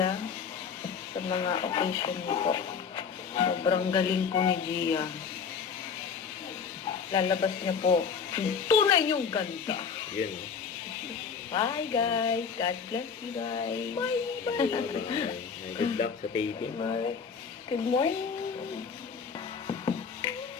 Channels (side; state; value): right; quieter; 6.2 dB